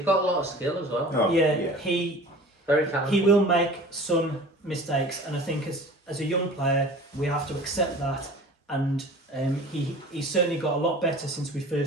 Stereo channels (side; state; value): both; normal; correlation 0.42